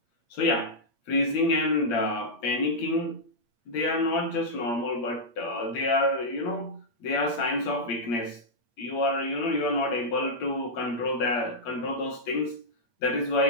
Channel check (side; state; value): right; late; 8.6 ms